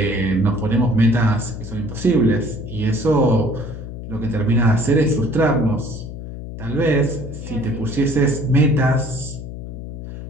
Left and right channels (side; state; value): left; noise; hum, 10 dB below the sound